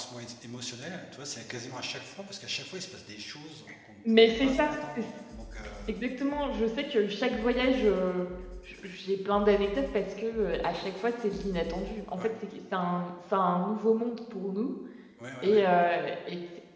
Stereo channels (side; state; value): both; identical; correlation 1.00